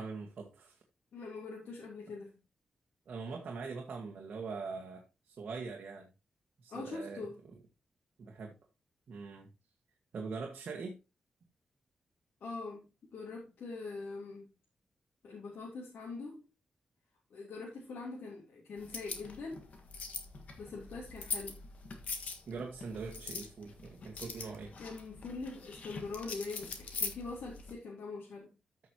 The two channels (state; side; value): normal; both; correlation 0.64